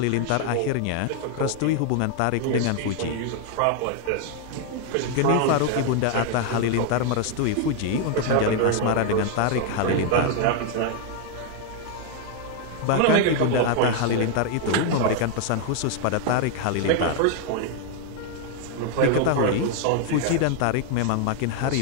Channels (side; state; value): both; different; correlation 0.00